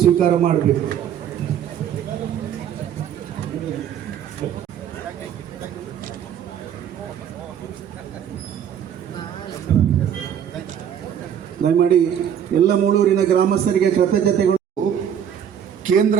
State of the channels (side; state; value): left; quieter; 9.0 dB